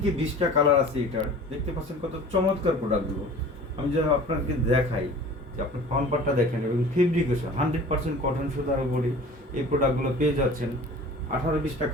20টা কালার আছে এটার। দেখতে পাচ্ছেন কত চমৎকার প্রোডাক্টগুলো। আমি যদি আপনাকে দেখাই, যে আপনি ফ্রন্ট পার্টটা দেখেন এবং ফেব্রিকেশন 100% কটন সুতার উপরে এই প্রোডাক্টগুলো পেয়ে যাচ্ছেন। 18-20টা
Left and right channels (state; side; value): normal; both; correlation 0.43